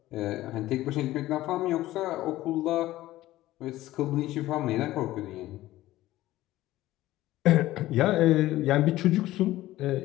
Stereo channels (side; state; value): right; quieter; 15.9 dB